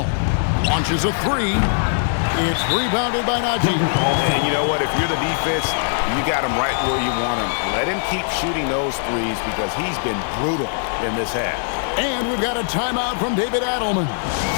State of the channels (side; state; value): right; silent; digital silence